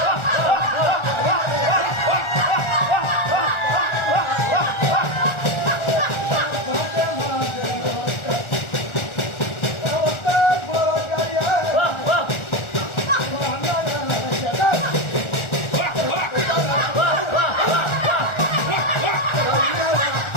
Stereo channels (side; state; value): right; late; 1.4 ms